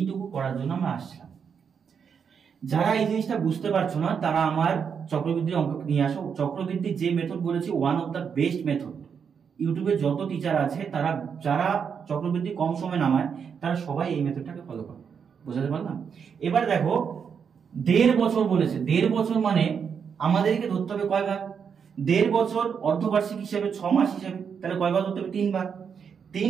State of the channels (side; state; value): left; quieter; 6.8 dB